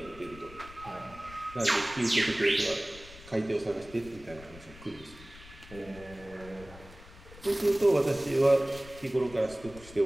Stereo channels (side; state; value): left; noise; rumble, 19 dB below the sound